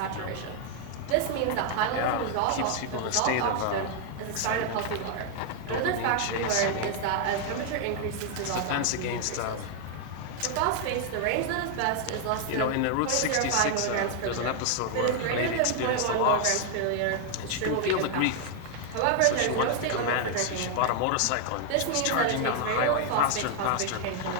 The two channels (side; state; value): both; different; correlation 0.00